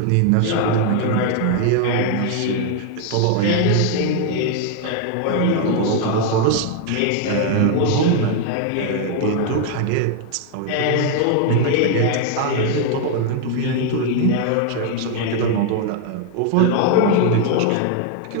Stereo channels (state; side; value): different; both; correlation 0.00